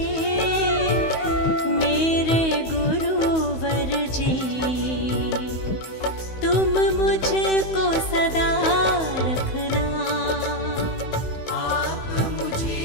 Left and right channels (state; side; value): late; right; 16 ms